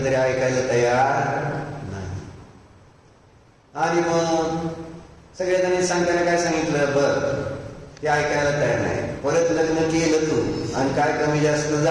तरी ऐकायला तयार नाही. आणि मग सगळ्या जणांनी सांगताना काय सांगितलं? बरं ते ऐकायला तयार नाही. परत लग्न केलं तू आणि काय कमी जास्त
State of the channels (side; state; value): both; identical; correlation 1.00